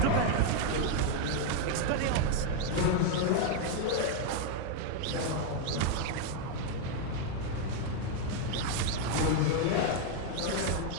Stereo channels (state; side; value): different; both; correlation 0.01